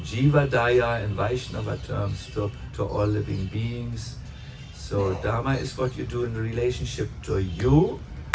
jiva daya in Vaishnava terms to all living beings. So dharma is what you do in relationship to you,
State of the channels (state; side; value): identical; both; correlation 1.00